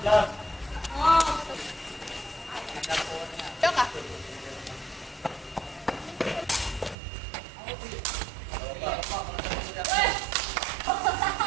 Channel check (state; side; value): drops out; left; at 7.0 s